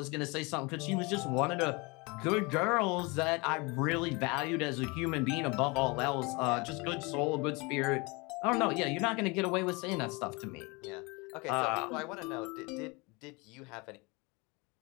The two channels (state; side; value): quieter; right; 27.2 dB